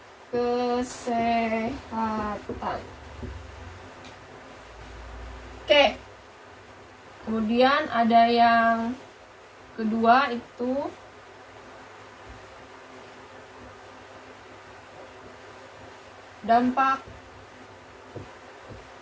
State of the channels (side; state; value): both; identical; correlation 1.00